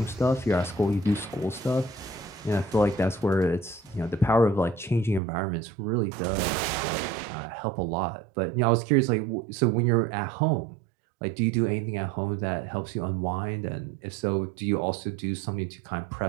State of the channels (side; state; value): left; drops out; at 5.2 s